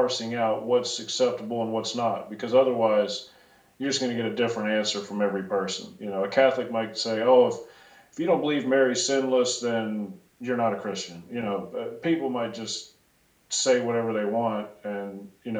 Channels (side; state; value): both; identical; correlation 1.00